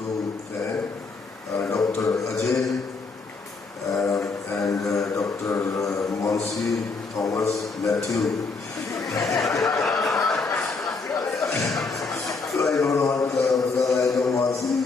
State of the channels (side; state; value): right; quieter; 4.2 dB